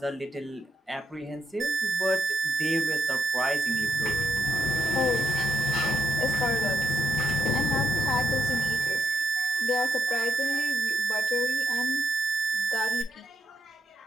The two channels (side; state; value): both; normal; correlation 0.80